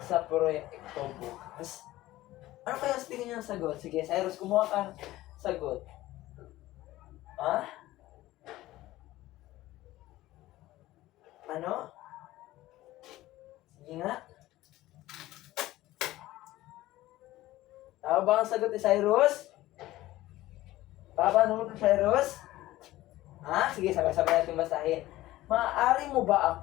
sa proyekto bukas? Ano kaya sa tingin niyo ang sagot? Sige, Cyrus, kumuha ka ng sagot. Ha? Ano? Sige nga. Tama ba ang sagot ni Cyrus? Paano mo ito, Cyrus? Ha? Sige, sabay-sabay natin basahin. Maaari mo ba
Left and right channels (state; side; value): quieter; right; 16.5 dB